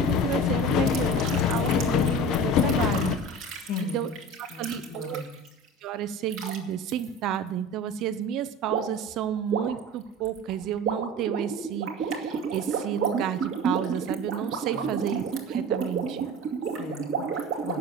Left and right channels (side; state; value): both; normal; correlation 0.34